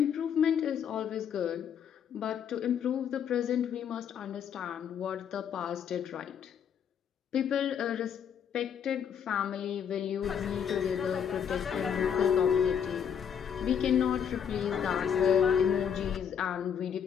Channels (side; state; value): right; quieter; 8.0 dB